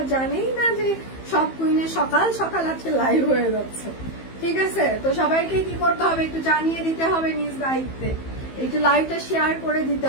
জানেই না যে সব কুইনে সকাল সকাল আজকে লাইভ হয়ে যাচ্ছে। ঠিক আছে, তো সবাইকে কি করতে হবে একটু জানিয়ে দিতে হবে নিজ দায়িত্বে, একটু লাইভটা শেয়ার করে দিতে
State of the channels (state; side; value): late; right; 15 ms